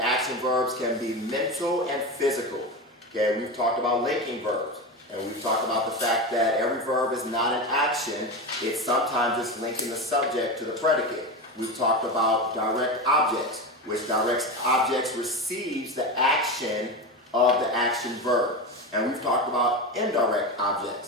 action verbs can be mental and physical. Okay, we've talked about linking verbs, and we've talked about the fact that every verb is not an action. It's sometimes just linking the subject to the predicate. We've talked about direct objects, which direct objects receives the action of the action verb. And we've talked about indirect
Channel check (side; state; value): both; normal; correlation 0.21